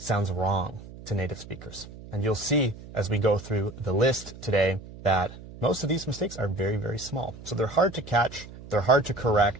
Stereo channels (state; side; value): noise; right; hum, 16 dB below the sound